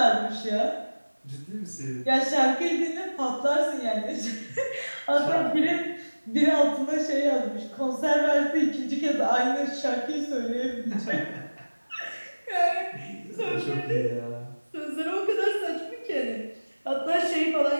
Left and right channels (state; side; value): inverted; both; correlation -1.00